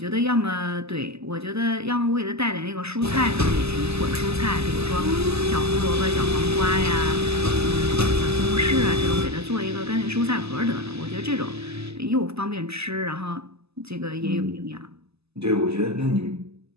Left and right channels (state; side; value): late; left; 0.79 ms